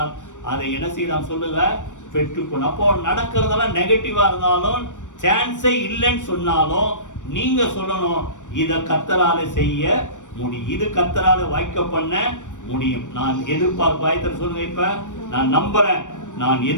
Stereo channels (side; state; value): right; late; 0.86 ms